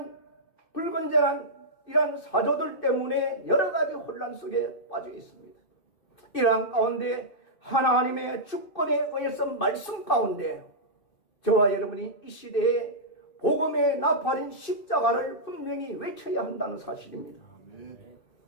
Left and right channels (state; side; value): late; right; 2.5 ms